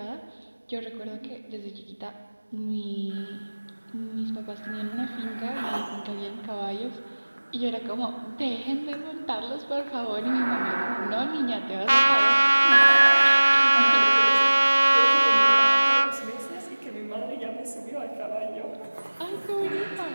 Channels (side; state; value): both; inverted; correlation -1.00